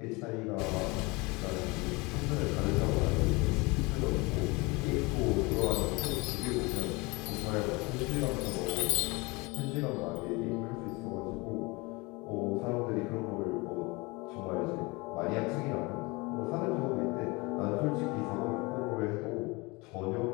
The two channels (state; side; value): quieter; right; 25.5 dB